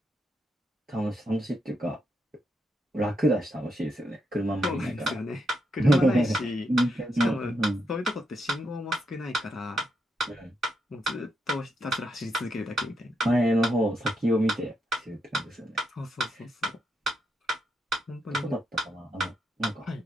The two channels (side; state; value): both; normal; correlation 0.81